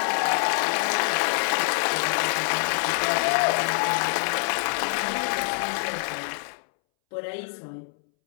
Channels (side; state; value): right; silent; 62 dB below the other